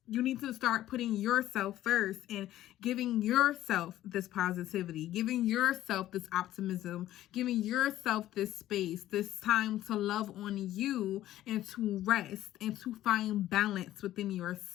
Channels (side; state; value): right; quieter; 13.8 dB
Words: You need to start putting yourself first and giving yourself this positivity, giving yourself this optimism, giving yourself this space, this time to love on you and to rest and to find balance within